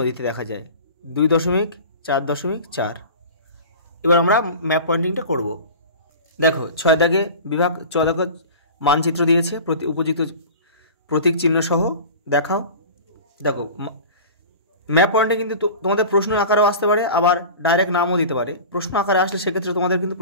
দেখা যায়, 2.4.4। এবার আমরা ম্যাপ পয়েন্টিংটা করব। দেখো 6 দাগে বিভাগ, 6 দাগে মানচিত্র দিয়েছে উপযুক্ত প্রতীক চিহ্ন সহ দেখাও। দেখো ম্যাপ পয়েন্টে কিন্তু তোমাদের প্রশ্ন আকারেও আসতে পারে, আবার ডাইরেক্ট নামও দিতে পারে। প্রশ্ন আকারে আসলে সেক্ষেত্রে তোমাদের কিন্তু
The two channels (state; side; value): inverted; both; correlation -0.36